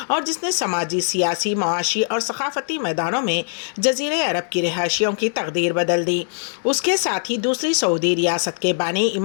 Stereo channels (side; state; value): right; silent; digital silence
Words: اور جس نے سماجی، سیاسی، معاشی اور ثقافتی میدانوں میں جزیرہ عرب کی رہائشیوں کی تقدیر بدل دی۔ اس کے ساتھ ہی دوسری سعودی ریاست کے بانی